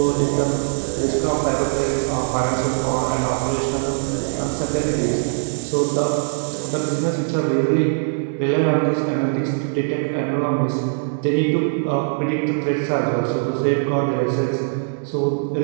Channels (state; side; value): silent; left; digital silence